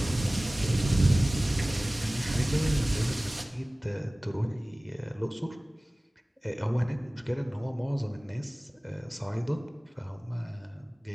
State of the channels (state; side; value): normal; both; correlation 0.98